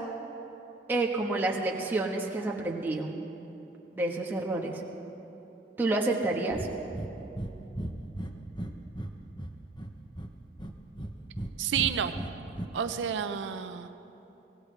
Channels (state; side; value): quieter; left; 3.0 dB